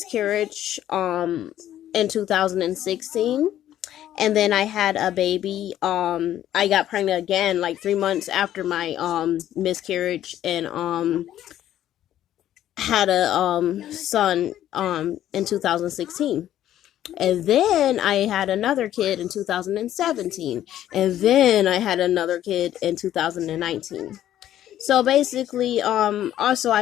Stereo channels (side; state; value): right; quieter; 12.0 dB